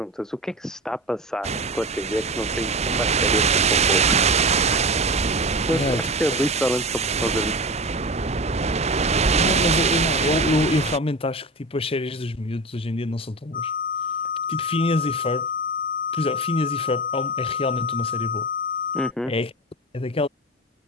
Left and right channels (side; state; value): both; normal; correlation 0.27